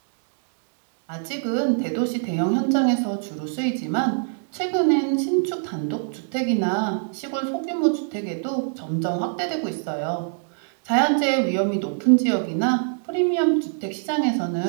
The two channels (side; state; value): left; silent; digital silence